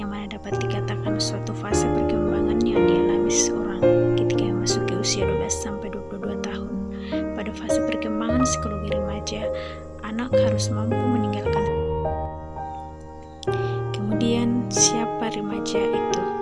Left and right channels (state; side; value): identical; both; correlation 1.00